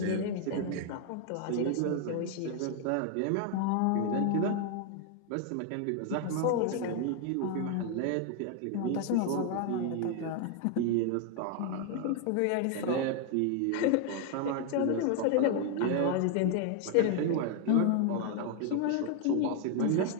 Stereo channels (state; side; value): different; both; correlation 0.00